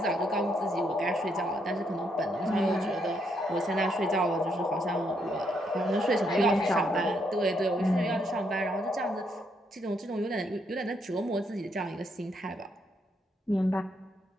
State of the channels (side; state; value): both; normal; correlation 0.75